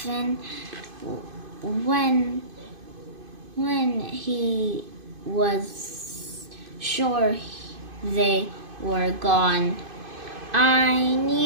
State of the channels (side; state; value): left; late; 2.5 ms